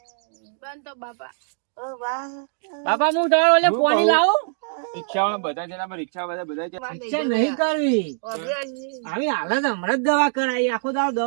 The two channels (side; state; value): left; silent; digital silence